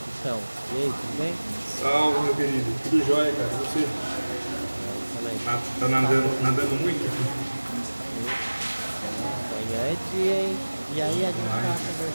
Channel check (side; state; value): both; inverted; correlation -1.00